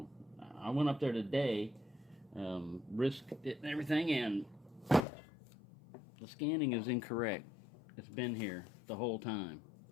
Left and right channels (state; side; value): drops out; right; at 5.1 s